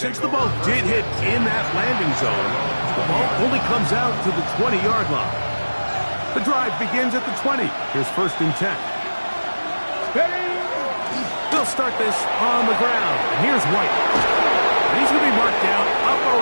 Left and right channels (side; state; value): both; inverted; correlation -1.00